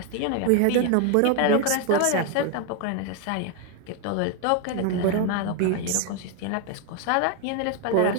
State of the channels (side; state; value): both; different; correlation 0.01